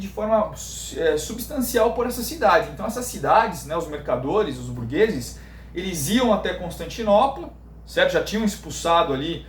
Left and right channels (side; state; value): both; identical; correlation 1.00